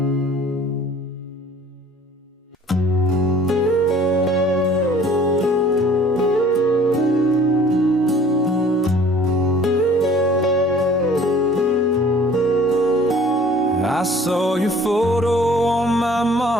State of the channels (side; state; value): both; normal; correlation 0.51